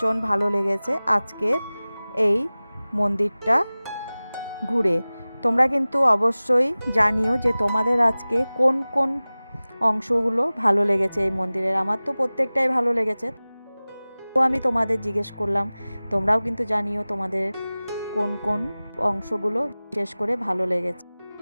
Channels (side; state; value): both; inverted; correlation -0.98